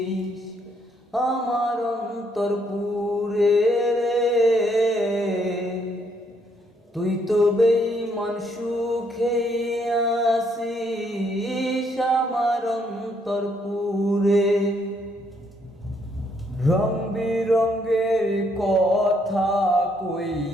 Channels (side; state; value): both; normal; correlation 0.71